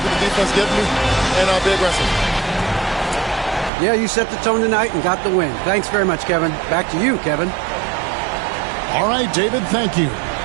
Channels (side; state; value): left; drops out; at 3.7 s